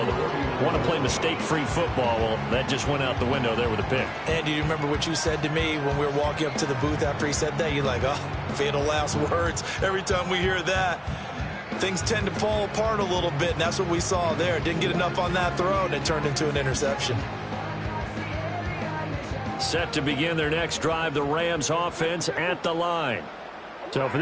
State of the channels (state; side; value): identical; both; correlation 1.00